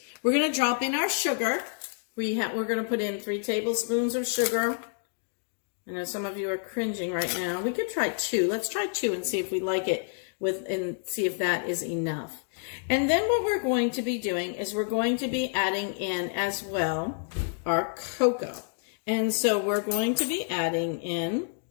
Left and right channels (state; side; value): silent; right; digital silence